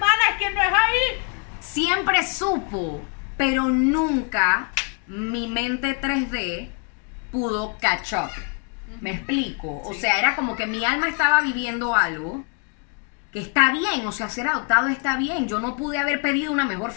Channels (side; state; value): right; quieter; 36.9 dB